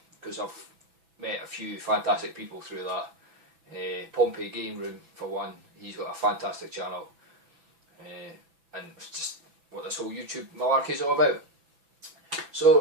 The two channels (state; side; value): late; left; 6.0 ms